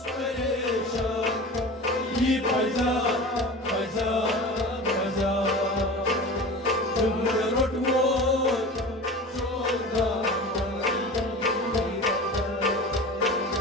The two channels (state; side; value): normal; both; correlation 0.34